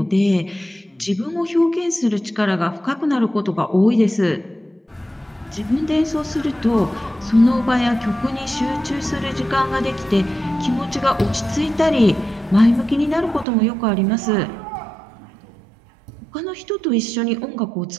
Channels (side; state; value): left; drops out; at 13.5 s